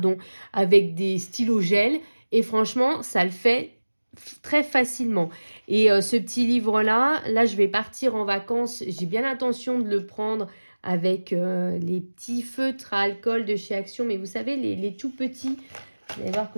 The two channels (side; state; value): both; inverted; correlation -1.00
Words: avec des stylos gel. Et franchement, ça le fait très facilement. Et ce petit livre-là, là, je vais partir en vacances. J'ai bien l'intention de le prendre avec les petits feutres à alcool de chez Action. Mais vous savez, les tout petits, vous allez voir